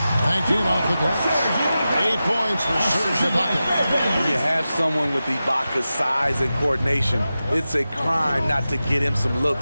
Banked in off the glass. 8 points for Serge Ibaka. When you have someone with Ibaka's size and coordination, it's a crime not to get him some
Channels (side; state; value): both; inverted; correlation -0.93